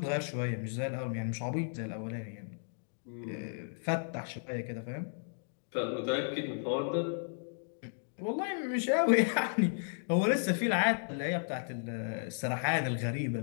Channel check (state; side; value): silent; right; digital silence